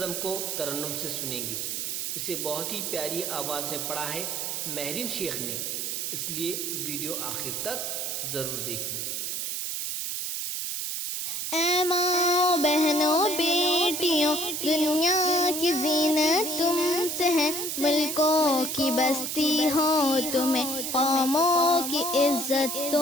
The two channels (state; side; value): noise; right; hiss, 3 dB below the sound